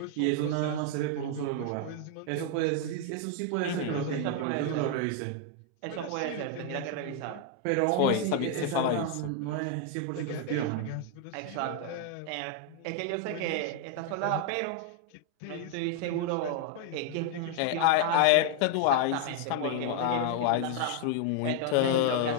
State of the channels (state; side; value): different; both; correlation 0.00